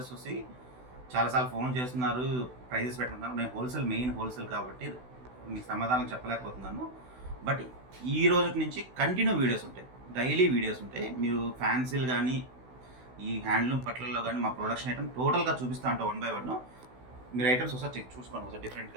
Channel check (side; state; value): left; late; 16 ms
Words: చూసి చాలాసార్లు ఫోన్ చేస్తున్నారు, ప్రైజెస్ పెట్టుకుంటున్నారు. నేను మెయిన్ హోల్సేల్ కాబట్టి మీకు సమాధానం చెప్పలేకపోతున్నాను. బట్ ఈ రోజు నుంచి కంటిన్యూ వీడియోస్ ఉంటాయి, డైలీ వీడియోస్ ఉంటాయి. మీరు ఫ్యాన్సీలు కానీ ఈ హ్యాండ్లూమ్ పట్లలో కానీ మా ప్రొడక్షన్ ఐటమ్ టోటల్గా చూపిస్తా ఉంటాం వన్ బై వన్. మీరు ఐటమ్స్ ఒకసారి చెక్ చూసుకోండి ఒకసారి